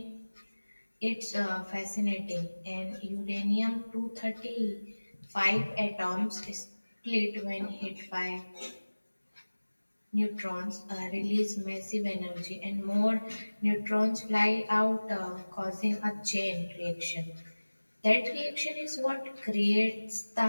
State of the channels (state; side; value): inverted; both; correlation -1.00